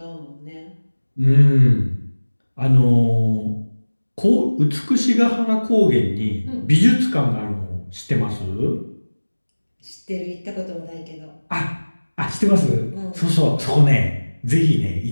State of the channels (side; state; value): both; inverted; correlation -1.00